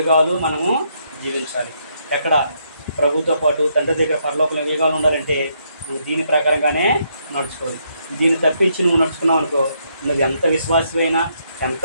మనము జీవించాలి. ఎక్కడ ప్రభుతో పాటు తండ్రి దగ్గర పరలోకంలో యుగాలు ఉండాలంటే నువ్వు దీని ప్రకారంగానే నడుచుకోవాలి. దీన్ని తప్పించి నువ్వు నడుచుకున్నావు అనుకో, నువ్వు ఎంత విశ్వాసమైనా,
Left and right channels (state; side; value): inverted; both; correlation -0.74